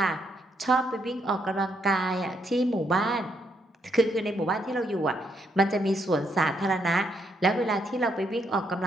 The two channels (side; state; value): both; normal; correlation 0.75